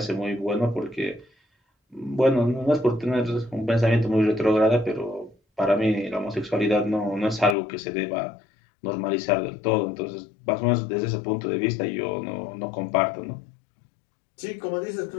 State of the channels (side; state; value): right; drops out; at 7.6 s